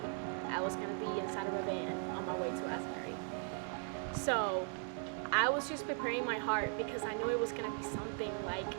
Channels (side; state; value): left; silent; 52 dB below the other